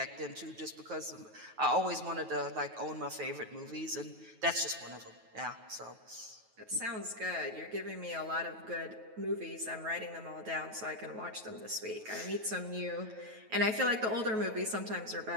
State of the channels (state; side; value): late; left; 9.3 ms